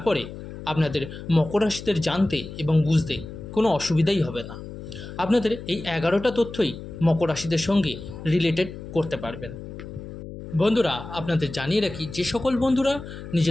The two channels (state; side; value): noise; left; hum, 11 dB below the sound